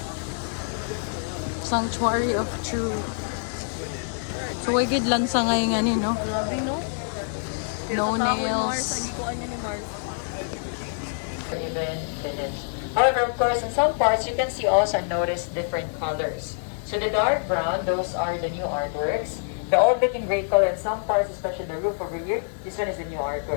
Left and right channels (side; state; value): right; silent; 61 dB below the other